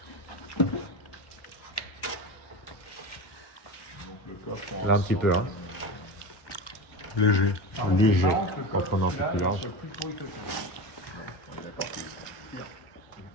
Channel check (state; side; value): late; right; 1.2 ms